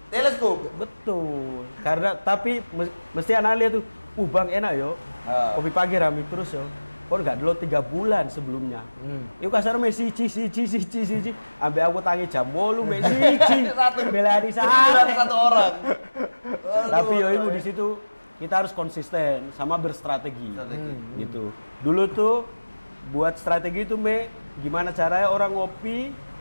Teleskop. Betul. Karena tapi mesti anak lihat tuh, Bang enak yo. Kopi pagi rame terus yo. Kok nggak dulu 3 bulan sebelumnya. Itu kasar siji. Ambil aku tangi jam 8 mek siji. Bela di Satu orang. Tapi yo ibu di situ kita harus konsisten sama berstrategi. Gitu. Dulu tuh buat strategi itu gimana caranya orang ngopi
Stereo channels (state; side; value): inverted; both; correlation -1.00